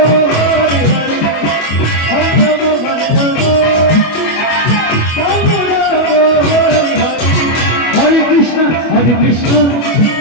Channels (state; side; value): late; right; 25 ms